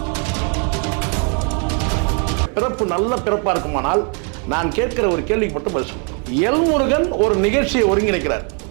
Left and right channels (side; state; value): left; quieter; 39.4 dB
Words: பிறப்பு நல்ல பிறப்பாக இருக்குமானால் நான் கேட்கிற ஒரு கேள்விக்கு மட்டும் பதில் சொல்கிறேன். எல்முருகன் ஒரு நிகழ்ச்சியை ஒருங்கிணைக்கிறார்.